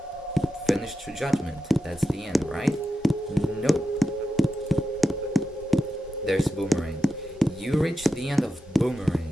finish true judgment. That's the end, right? Nope. There's Boomerang. You reach the end of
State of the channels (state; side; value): normal; both; correlation 0.90